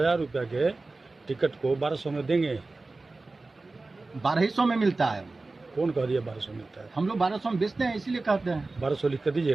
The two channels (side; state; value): left; quieter; 3.4 dB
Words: रुपया के टिकट को 1200 में देंगे। 1200 में मिलता है। कौन कह दिया 1200 मिलता है? हम लोग 1200 में बेचते हैं, इसीलिए कहते हैं। 1200 लिख कर